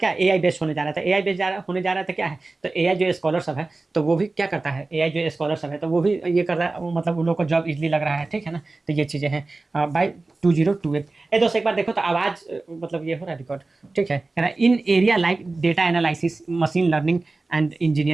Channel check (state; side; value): quieter; left; 3.4 dB